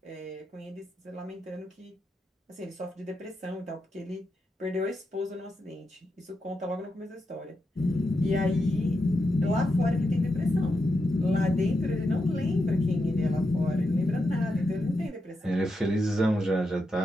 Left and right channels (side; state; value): both; normal; correlation 0.86